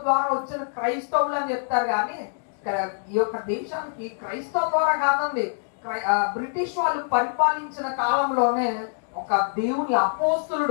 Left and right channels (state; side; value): silent; right; digital silence